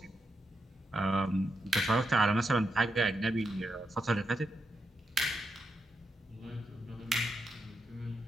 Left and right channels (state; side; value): normal; both; correlation 0.84